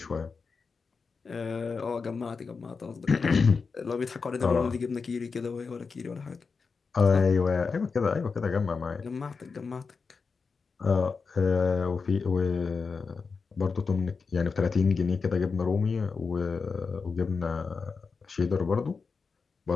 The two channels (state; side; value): quieter; right; 4.9 dB